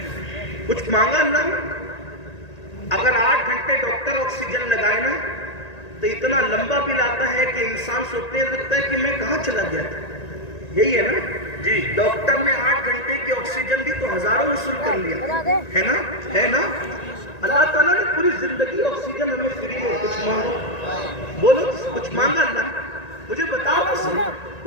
کچھ مانگا اللہ نے؟ اگر 8 گھنٹے ڈاکٹر آکسیجن لگائے نا تو اتنا لمبا بل آتا ہے کہ انسان سوچنے لگتا ہے کہ میں کہاں چلا گیا تھا۔ یہی ہے نا جی، ڈاکٹر نے 8 گھنٹے کی آکسیجن دی تو ہزاروں وصول کر لیا، ہے نا؟ اللہ تعالیٰ نے پوری زندگی آکسیجن ہمیں فری میں، کچھ مانگو، بولو کچھ مانگا اللہ نے؟ مجھے بتاؤ تو صحیح،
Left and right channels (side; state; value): right; late; 1.9 ms